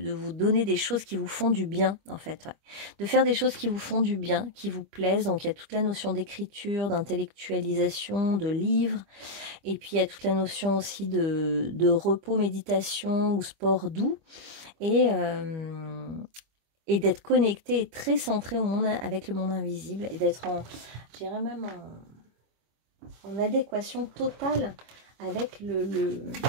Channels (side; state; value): left; late; 25 ms